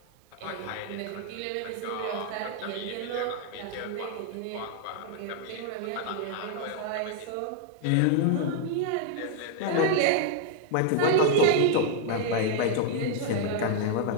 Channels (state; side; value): different; both; correlation 0.00